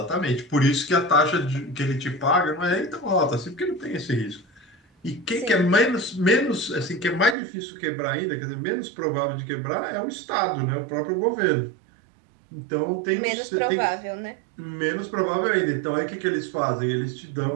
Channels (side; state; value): left; drops out; at 7.4 s